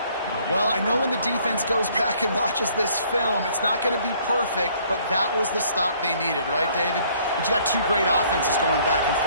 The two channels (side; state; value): both; inverted; correlation -0.61